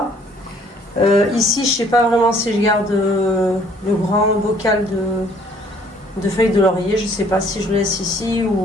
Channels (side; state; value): both; normal; correlation 0.59